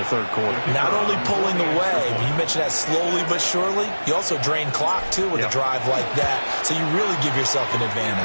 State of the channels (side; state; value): both; inverted; correlation -1.00